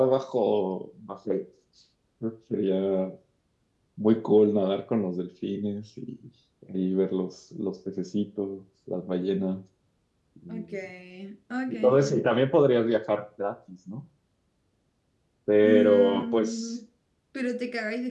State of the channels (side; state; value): both; identical; correlation 1.00